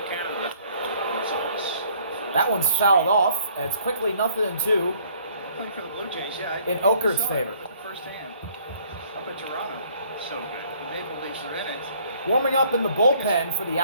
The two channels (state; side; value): inverted; both; correlation -0.60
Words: Canada. That one's fouled off. And it's quickly 0-2 Playing for the Blue Jays, yeah. in Okert's favor. Firsthand. Up in Toronto. So good. The Maple Leafs are in it. Warming up in the bullpen for the